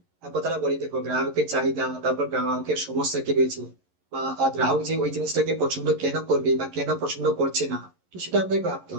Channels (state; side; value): late; left; 11 ms